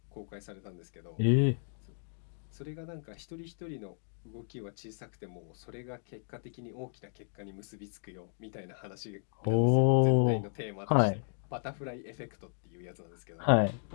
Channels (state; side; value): silent; right; digital silence